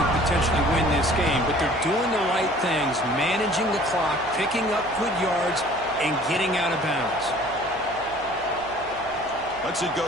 potentially win this game, but they're doing the right things, managing the clock, picking up good yards, and getting out of bounds. Lets it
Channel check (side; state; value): right; noise; hum, 21 dB below the sound